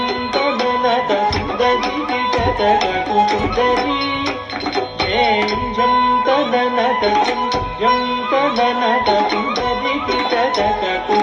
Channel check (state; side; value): identical; both; correlation 1.00